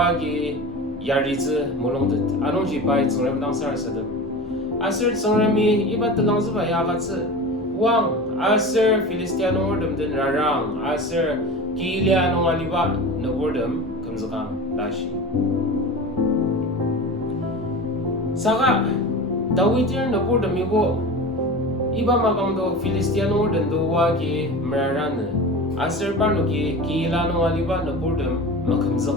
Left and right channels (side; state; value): both; normal; correlation 0.31